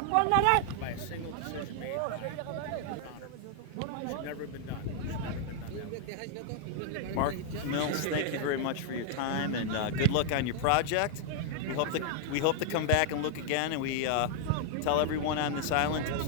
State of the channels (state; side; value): different; both; correlation -0.01